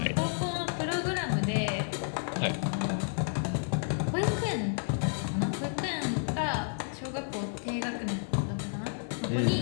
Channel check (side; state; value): right; silent; digital silence